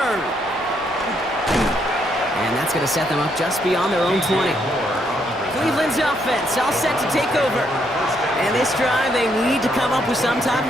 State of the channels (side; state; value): both; normal; correlation 0.74